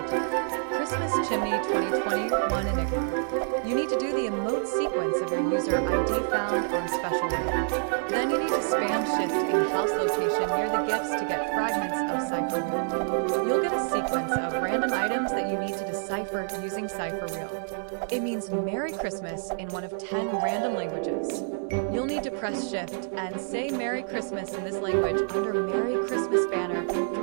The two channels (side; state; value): left; silent; digital silence